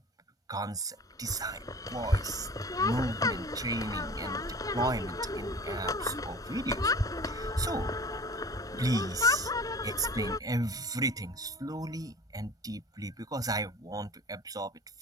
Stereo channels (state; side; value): normal; both; correlation 0.41